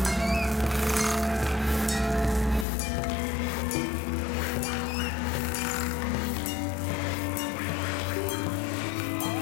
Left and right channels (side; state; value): right; drops out; at 2.7 s